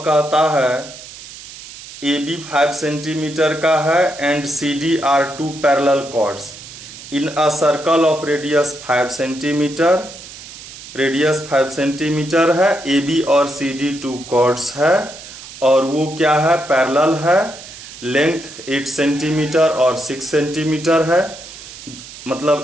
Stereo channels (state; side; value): noise; right; hiss, 15 dB below the sound